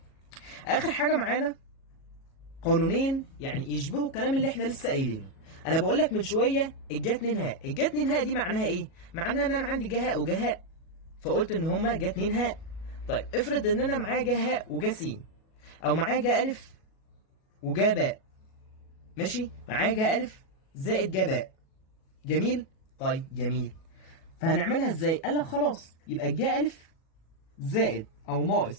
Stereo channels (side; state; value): right; late; 37 ms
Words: اخر حاجه معانا قانونين يعني يشبهوا الكلام اللي احنا لسه قايلينه. انا بقول لك من شويه الجا 2 هاء، الجا 2 هاء دي معناها ايه؟ معناها ان انا عندي جهاء وجهاء، فقلت ان هما جا 2 هاء. طيب افرض ان انا معايا جهاء وجا س، او معايا جا الف وجا باء. ماشي؟ معايا جا الف زائد جا باء. جميل؟ طيب جميل. فهنعملها ازاي؟ قال لك خلاص يبقى الجا الف زائد او